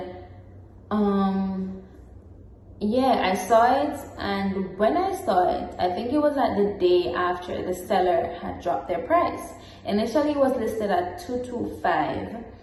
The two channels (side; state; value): both; identical; correlation 1.00